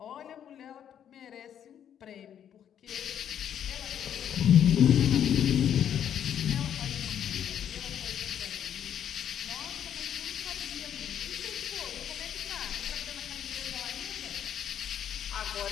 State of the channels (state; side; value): quieter; right; 9.5 dB